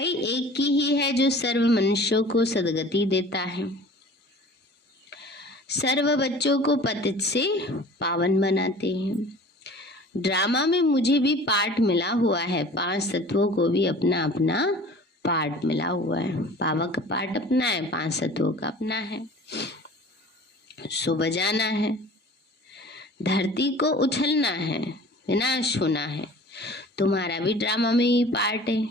एक की ही है जो सर्व मनुष्यों को सदगति देता है, सर्व बच्चों को पतित से पावन बनाते हैं। ड्रामा में मुझे भी पार्ट मिला हुआ है, 5 तत्वों को भी अपना अपना पार्ट मिला हुआ है। बाबा का पार्ट अपना है, 5 तत्वों का अपना है। सो बजाना है, धरती को उछलना है, विनाश होना है। तुम्हारा भी ड्रामा में ही पार्ट है,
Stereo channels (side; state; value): both; normal; correlation 0.44